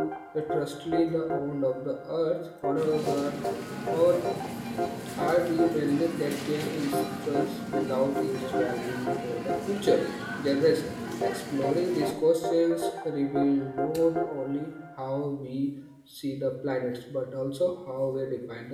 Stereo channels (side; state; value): both; identical; correlation 1.00